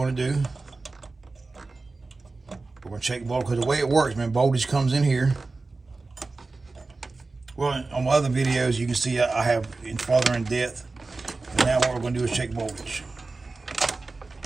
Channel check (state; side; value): quieter; left; 3.6 dB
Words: do, we're gonna check voltage, because the way it works, man, voltage comes in here. Well, on my other videos, you can see I have it farther in depth. And now what we're gonna do is check voltage.